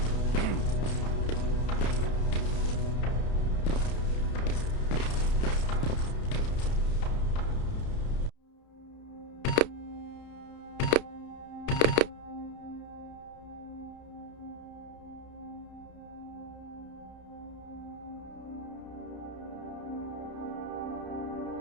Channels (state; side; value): late; right; 31 ms